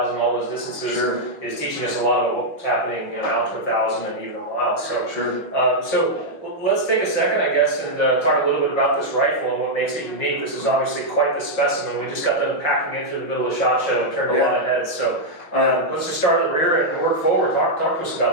all those distances is teaching us a lot of what's happening out to 1,000 and even a mile. So, so let's take a second, I guess, and talk a little bit about this rifle and what makes it unique. This is obviously quite the specimen. We just got them packing in through the middle of the SHOT Show and turned a lot of heads. So let's just start at the rear and work forward. Talk to us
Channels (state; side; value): late; right; 5.8 ms